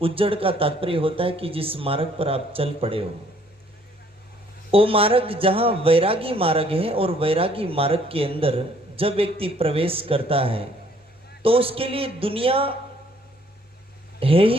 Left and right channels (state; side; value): normal; both; correlation 0.62